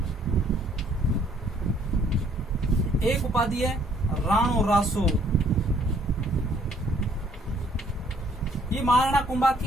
एक उपाधि है राणो रासो। ये महाराणा कुंभा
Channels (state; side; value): normal; both; correlation 0.63